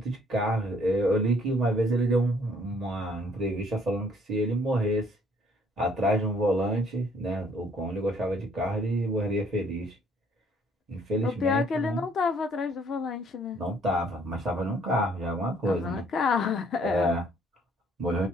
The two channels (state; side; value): normal; both; correlation 0.62